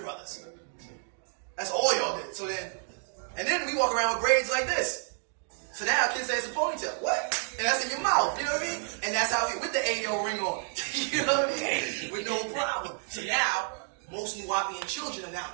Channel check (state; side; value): silent; left; 58 dB below the other